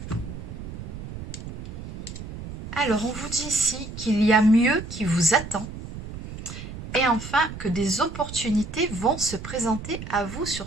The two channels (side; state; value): right; noise; rumble, 10 dB below the sound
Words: Alors, on vous dit ici qu'il y a mieux qui vous attend et enfin que des opportunités vont se présenter à vous